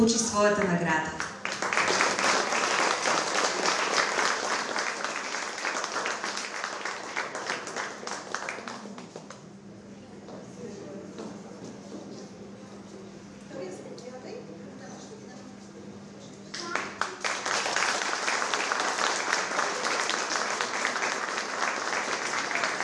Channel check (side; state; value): both; identical; correlation 1.00